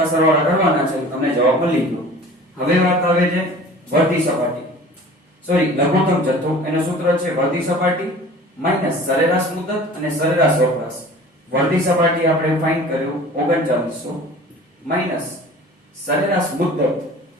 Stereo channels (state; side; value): normal; both; correlation 0.43